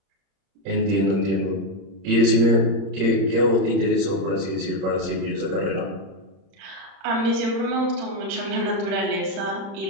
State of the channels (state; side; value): late; left; 30 ms